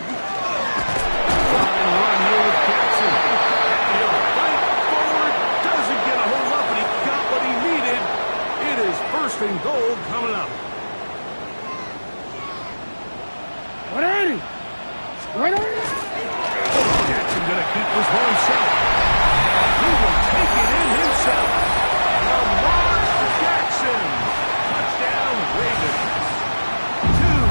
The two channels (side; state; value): both; inverted; correlation -1.00